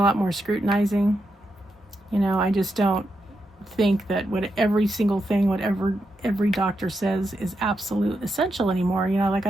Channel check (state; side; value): normal; both; correlation 0.85